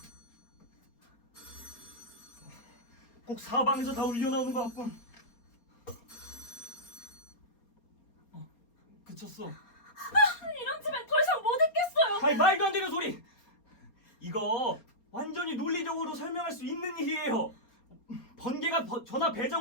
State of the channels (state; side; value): late; right; 4.3 ms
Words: 꼭 사방에서 다 울려 나오는 것 같군. 그쳤어. 이런 집엔 더 이상 못 있겠어요. 아이 말도 안 되는 소리. 이거 완전히 논리적으로 설명할 수 있는 일이에요. 번개가 전화